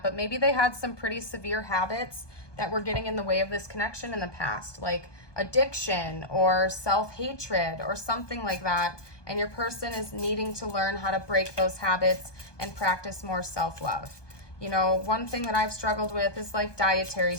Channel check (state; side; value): late; right; 1.2 ms